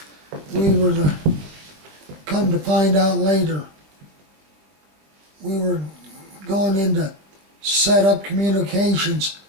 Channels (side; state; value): left; late; 21 ms